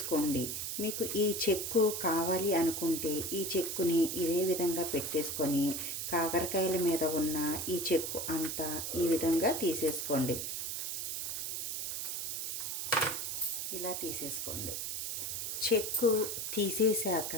మీకు ఈ చెక్కు కావాలి అనుకుంటే ఈ చెక్కుని ఇదే విధంగా పెట్టేసుకొని కాకరకాయల మీద ఉన్న ఈ చెక్కు అంతా ఈ విధంగా తీసేసుకోండి. ఇలా తీసేసుకోండి. చెక్కు తీసేశాక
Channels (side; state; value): right; noise; hiss, 3 dB below the sound